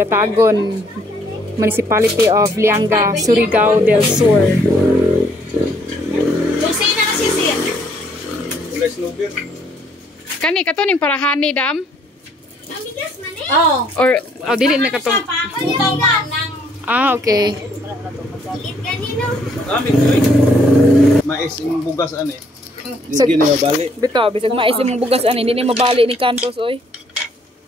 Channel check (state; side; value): normal; both; correlation 0.66